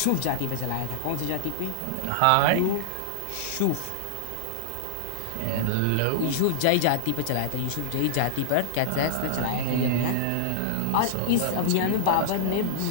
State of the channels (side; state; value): both; different; correlation -0.01